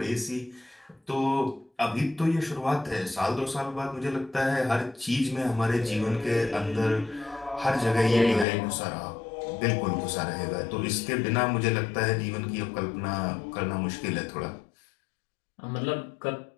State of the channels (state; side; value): drops out; right; at 8.5 s